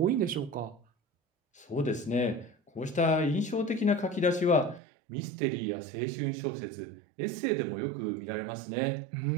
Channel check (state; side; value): drops out; left; at 4.8 s